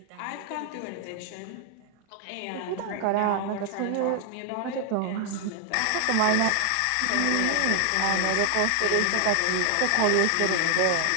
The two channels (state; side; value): different; both; correlation 0.00